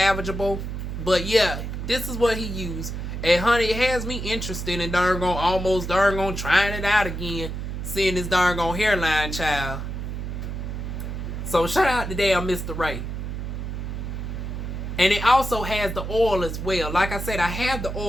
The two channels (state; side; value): noise; right; hum, 5 dB below the sound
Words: But yeah, this is what he used. And honey, it has me interested in almost trying it out again. Seeing this hairline, child. So shout out to damn Mr. Ray. And it also has the oil as well. Like I said, I have the